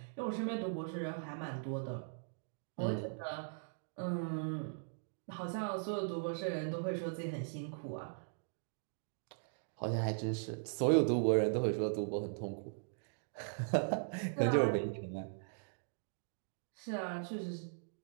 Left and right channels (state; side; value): silent; left; digital silence